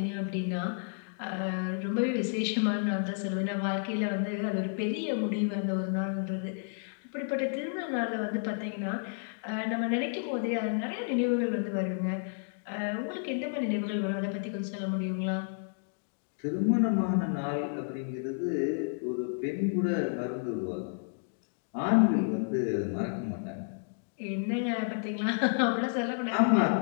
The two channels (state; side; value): silent; right; digital silence